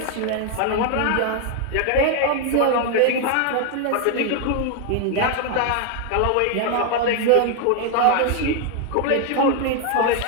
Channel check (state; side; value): different; both; correlation 0.01